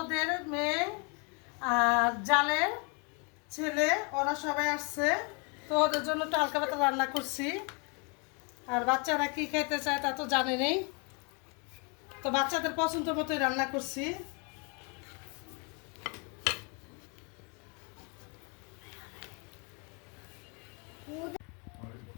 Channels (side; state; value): right; quieter; 34.2 dB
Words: মেয়ে আর জালের ছেলে, ওরা সবাই আসছে। তো ওদের জন্য একটু হালকা পাতলা রান্না করছি। আর বাচ্চারা কি খেতে চায় তা তো জানে নেই, তো বাচ্চাদের পছন্দ মতোই রান্না করছি।